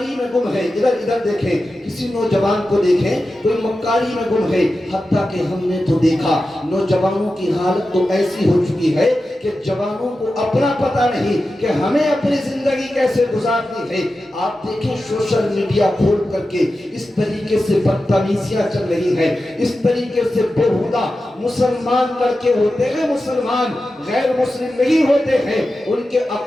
میں گم ہے، ادھر دیکھیں کسی نوجوان کو دیکھیں کوئی مکاری میں گم ہے۔ حتیٰ کہ ہم نے تو دیکھا نوجوانوں کی حالت تو ایسی ہو چکی ہے کہ جوانوں کو اپنا پتہ نہیں کہ ہمیں اپنی زندگی کیسے گزارنی ہے۔ آپ دیکھیں سوشل میڈیا کھول کر کے اس طریقے سے بدتمیزیاں چل رہی ہیں، اس طریقے سے بےہودہ مسلمان لڑکے ہوتے ہیں، مسلمان غیر مسلم نہیں ہوتے ہیں، ان کے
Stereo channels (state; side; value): normal; both; correlation 0.92